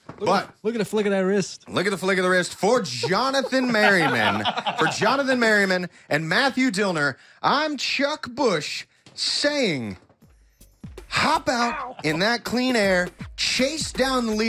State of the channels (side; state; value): both; identical; correlation 1.00